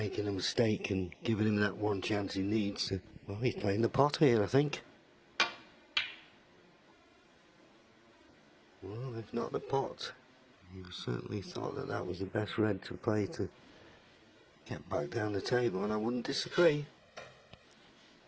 a mistake and giving him that one chance he needs. Well, he's playing the pot here, I think. Well, if not the pot, he certainly thought that that was the best red to play to get back down the table, and I wouldn't disagree.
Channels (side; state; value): both; identical; correlation 1.00